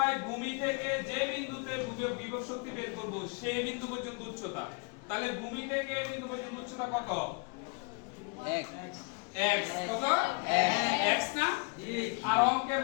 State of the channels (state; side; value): quieter; right; 32.9 dB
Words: ভূমি থেকে যে বিন্দুতে বিভব শক্তি বের করব সেই বিন্দু পর্যন্ত উচ্চতা। তাহলে ভূমি থেকে এই বিন্দু পর্যন্ত উচ্চতা কত? x। কত? x না? আর অঙ্কের